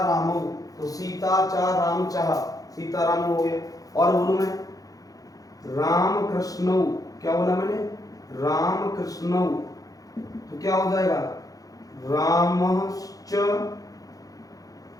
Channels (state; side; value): late; right; 0.17 ms